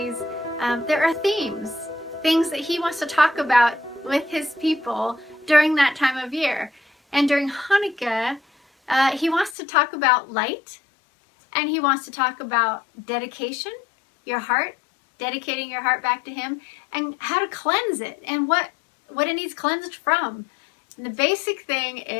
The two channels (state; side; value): drops out; right; at 9.6 s